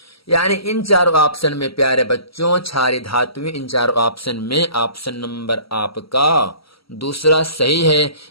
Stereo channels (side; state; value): right; late; 0.75 ms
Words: यानी इन चारों ऑप्शन में प्यारे बच्चों क्षारीय धातुएं, इन चारों ऑप्शन में ऑप्शन नंबर आपका दूसरा सही है।